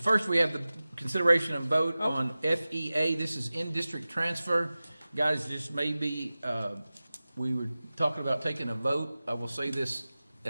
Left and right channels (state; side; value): inverted; both; correlation -0.97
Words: first we have the consideration and vote on FEA. This is in-district transfer. Guys, this may be, we were talking about taking a vote. I will say this